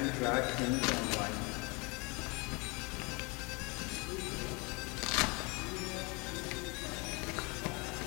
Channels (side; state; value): right; quieter; 29.3 dB